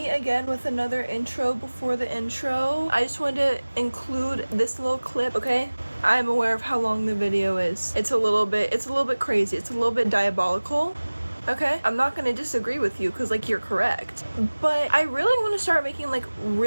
again with another intro before the intro. I just wanted to include this little clip, okay? I'm aware of how long the video is. It's a little bit crazy. It's a little bit diabolical. Okay, I'm not gonna disagree with you because like you're correct, but I really want to start making like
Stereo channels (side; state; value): both; inverted; correlation -1.00